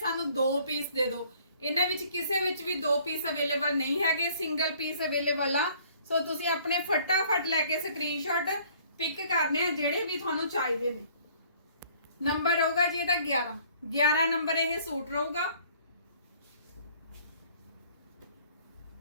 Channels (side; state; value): both; inverted; correlation -0.57